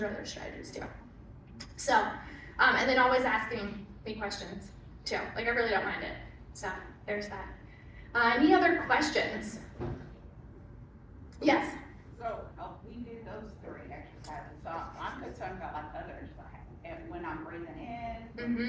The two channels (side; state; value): both; identical; correlation 1.00